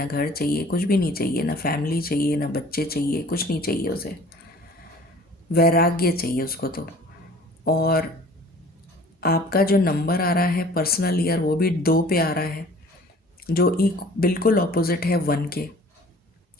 घर चाहिए, कुछ भी नहीं चाहिए, ना फैमिली चाहिए, ना बच्चे चाहिए, कुछ नहीं चाहिए उसे। वैराग्य चाहिए उसको तो। और आपका जो नंबर आ रहा है पर्सनल ईयर, वो भी 2 पे आ रहा है, जो बिल्कुल ऑपोजिट है 1 के।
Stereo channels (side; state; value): both; normal; correlation 0.49